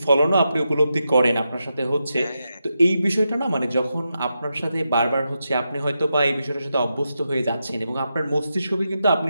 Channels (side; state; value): both; inverted; correlation -0.87